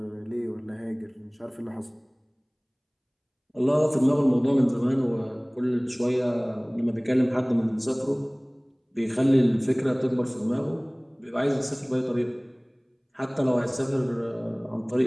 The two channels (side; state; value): both; identical; correlation 1.00